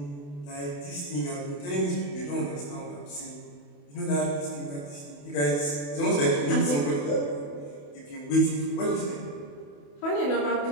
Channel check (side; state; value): right; late; 28 ms